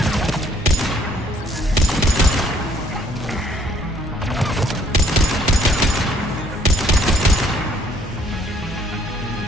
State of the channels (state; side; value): normal; both; correlation 0.63